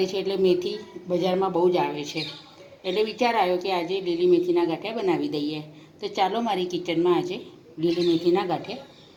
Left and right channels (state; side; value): identical; both; correlation 1.00